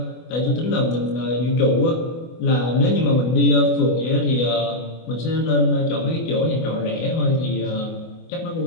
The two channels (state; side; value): late; right; 24 ms